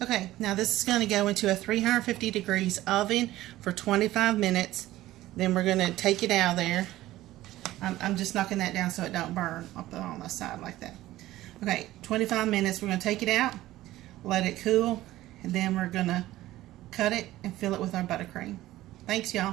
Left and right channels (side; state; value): left; quieter; 15.7 dB